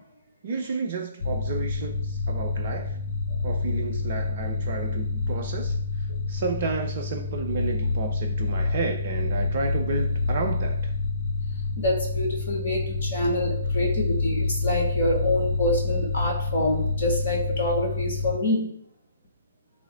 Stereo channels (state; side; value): inverted; both; correlation -0.59